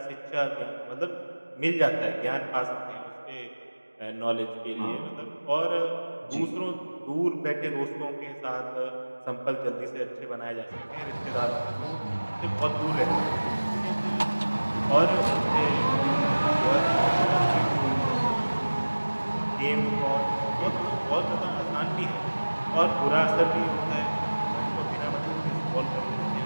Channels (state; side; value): inverted; both; correlation -1.00